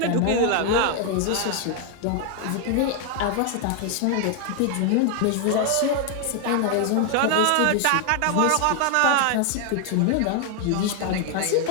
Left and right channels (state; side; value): different; both; correlation 0.00